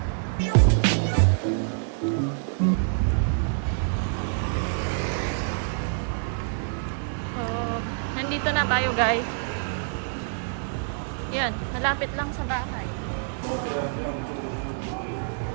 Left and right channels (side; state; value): left; silent; digital silence